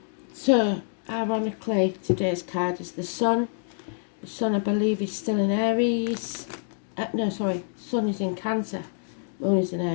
so ironically today's card is the Sun. The Sun, I believe, is still in Aries. Sun is in Cancer, Moon is in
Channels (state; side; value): silent; right; digital silence